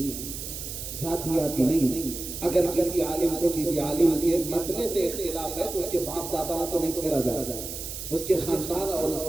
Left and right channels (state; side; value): noise; right; hiss, 8 dB below the sound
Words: ذاتیاتی نہیں۔ اگر کسی عالم کو کسی عالم کے مسئلے سے اختلاف ہے تو اس کے باپ داداؤں کو نہیں چھیڑا جائے، اس کے خاندان اور اس